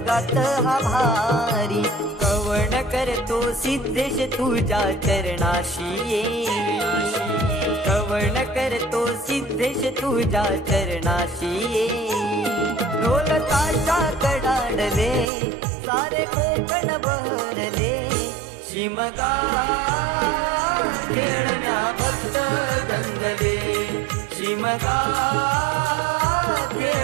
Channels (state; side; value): drops out; left; at 15.2 s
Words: हा भारी. कवण करतो सिद्धेश तुझ्या चरणाशी ये, कवण करतो सिद्धेश तुझ्या चरणाशी ये. ढोल ताशा कडाडले सारे कोकण बहरले, शिमगा खेळण्या भक्त दंगले, शिमगा